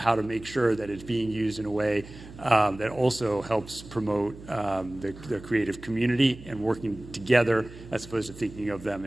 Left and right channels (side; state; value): right; noise; hum, 17 dB below the sound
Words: to make sure that it's being used in a way that also helps promote the creative community and working together as opposed to thinking of them